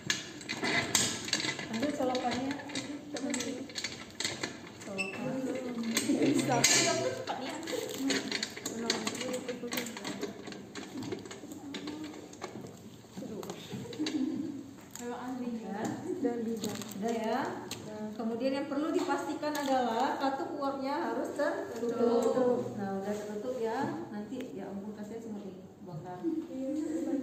Ambil colokannya. Udah ya. Kemudian yang perlu dipastikan adalah katup uapnya harus tertutup. Nah udah tertutup ya. Nanti ya ampun kasih semua ini bakar.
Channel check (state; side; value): identical; both; correlation 1.00